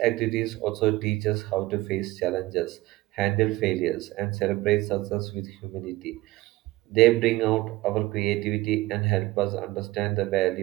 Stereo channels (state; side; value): quieter; left; 18.8 dB